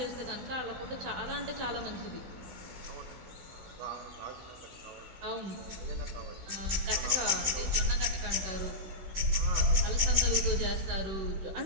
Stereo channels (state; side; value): late; left; 16 ms